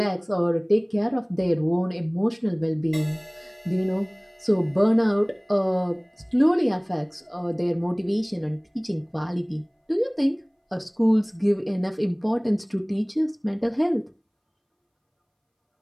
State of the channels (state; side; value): identical; both; correlation 1.00